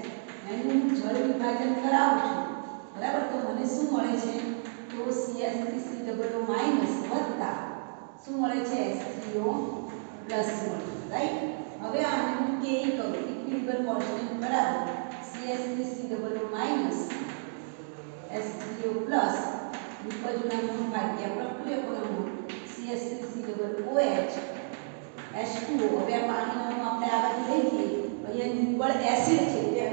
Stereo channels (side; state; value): left; silent; digital silence